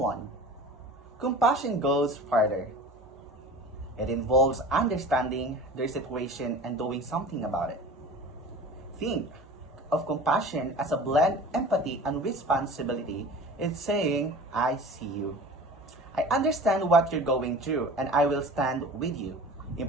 Compassion goes farther. It involves understanding their situation and doing something about it. Think of compassion as a blend empathy and responsibility. It's saying, I see you. I understand what you're going through and I will stand with you.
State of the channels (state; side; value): normal; both; correlation 0.38